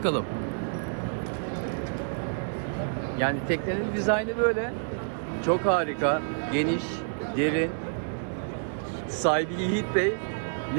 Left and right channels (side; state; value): left; silent; digital silence